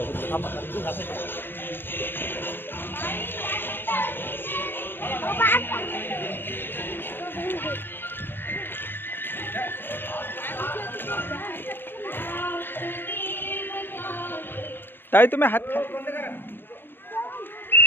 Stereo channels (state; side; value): late; right; 0.10 ms